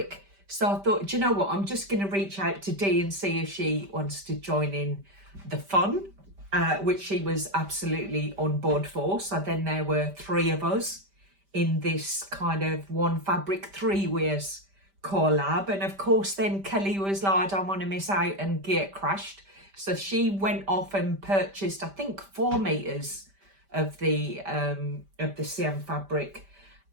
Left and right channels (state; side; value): late; left; 5.1 ms